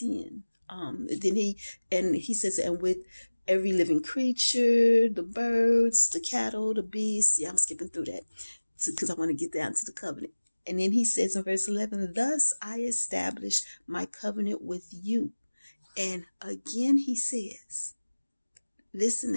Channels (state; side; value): inverted; both; correlation -1.00